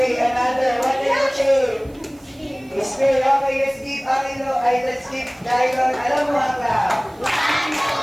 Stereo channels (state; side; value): noise; right; hiss, 29 dB below the sound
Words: another. What is the shape? Sphere. Okay, let's keep Angelo. Let's keep Dylan. Alam mo haka.